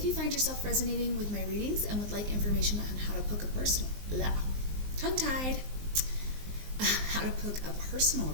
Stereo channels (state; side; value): late; left; 19 ms